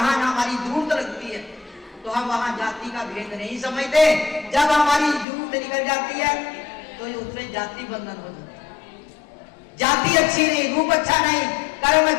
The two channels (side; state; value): right; drops out; at 5.2 s